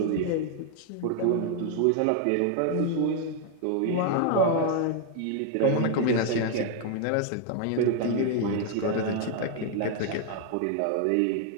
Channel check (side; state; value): both; different; correlation 0.00